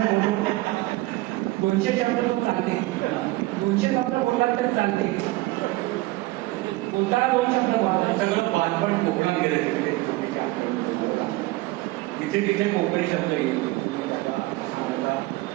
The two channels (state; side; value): quieter; left; 20.1 dB